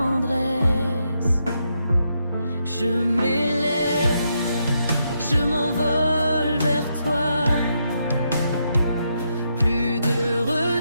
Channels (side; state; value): both; inverted; correlation -0.80